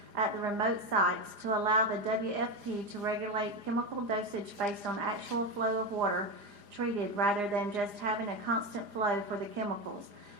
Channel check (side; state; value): left; late; 4.9 ms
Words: at the remote sites to allow the WFP to regulate chemical dosage based on actual flow of water treated rather than just having a constant flow for the chemicals,